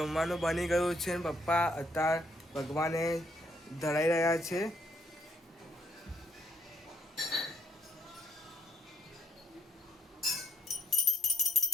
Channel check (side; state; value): both; normal; correlation 0.72